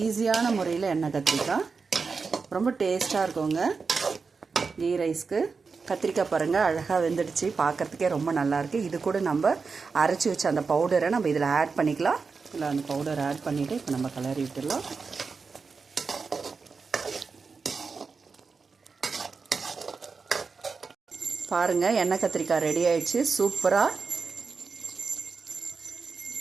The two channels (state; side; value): quieter; left; 4.9 dB